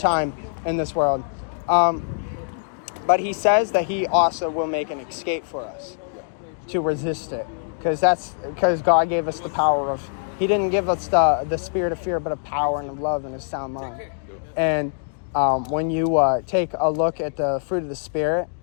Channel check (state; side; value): silent; right; digital silence